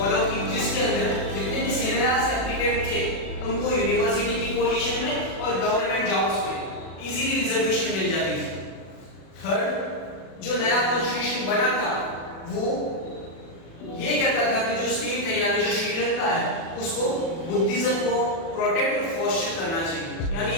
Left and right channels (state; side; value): late; right; 36 ms